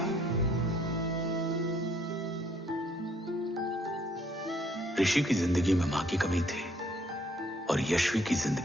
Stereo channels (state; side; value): normal; both; correlation 0.65